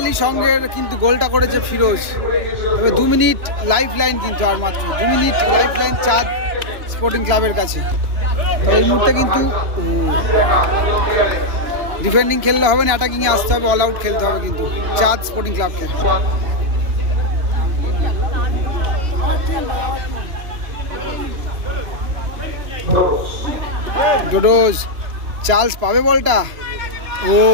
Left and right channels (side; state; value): left; late; 3.0 ms